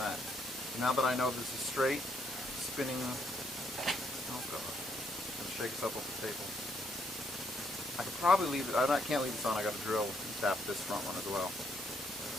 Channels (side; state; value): both; normal; correlation 0.72